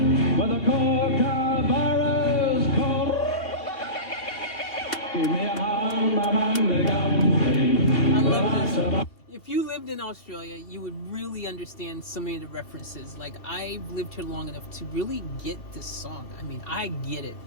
with a kookaburra's called. Give me a home among the country. I love this. If you lived in Australia, you would really understand so many of the references. Like, I've lived here long enough to really get this song. I mean, I get it.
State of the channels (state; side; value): late; right; 2.6 ms